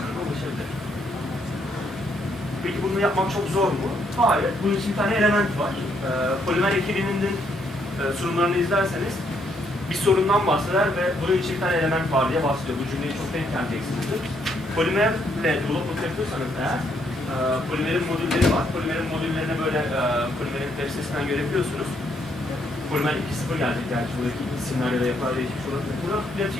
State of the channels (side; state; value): both; normal; correlation 0.73